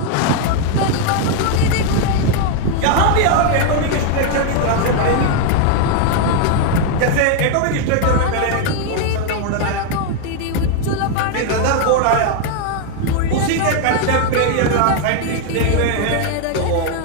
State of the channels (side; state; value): both; different; correlation 0.00